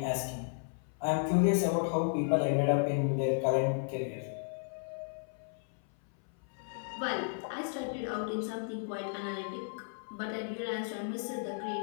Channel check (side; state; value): right; silent; 55 dB below the other